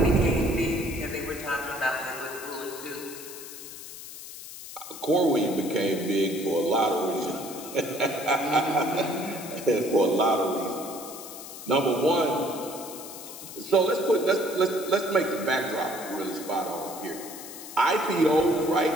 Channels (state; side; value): noise; left; hiss, 13 dB below the sound